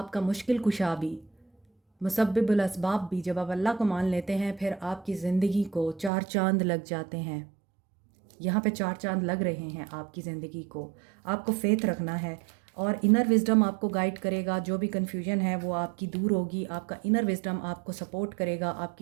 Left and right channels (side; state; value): left; drops out; at 6.1 s